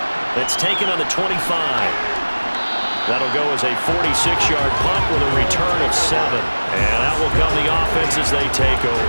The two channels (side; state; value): both; inverted; correlation -1.00